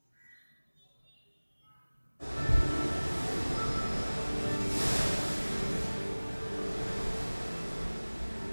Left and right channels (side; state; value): both; inverted; correlation -1.00